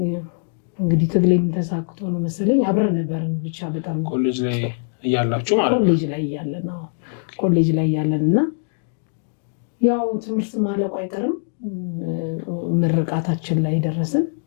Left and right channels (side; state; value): right; silent; digital silence